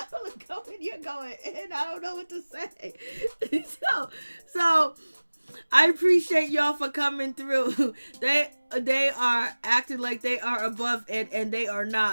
are you're going in. I don't know what to say. So I appreciate y'all for coming through. They are acting like they are above it, and they are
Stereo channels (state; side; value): inverted; both; correlation -1.00